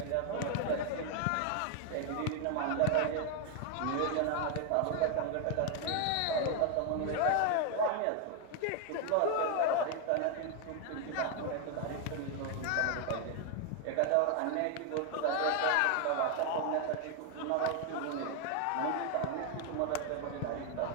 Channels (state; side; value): different; both; correlation 0.01